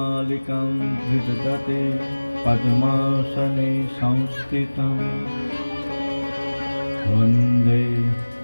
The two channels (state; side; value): inverted; both; correlation -1.00